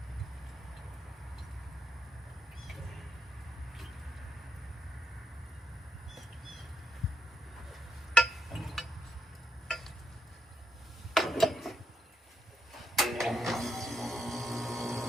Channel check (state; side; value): normal; both; correlation 0.80